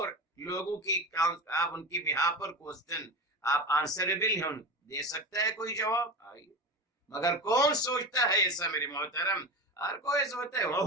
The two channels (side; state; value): both; normal; correlation 0.25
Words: لوگوں کی آپ ان کی بیہا پر کوسچن آپ آنسربل ہیں، دے سکتا ہے کوئی جواب؟ آئیے، مگر کون سوچتا ہے ایسا میرے محترم؟ ہر کوئی سوچتا ہے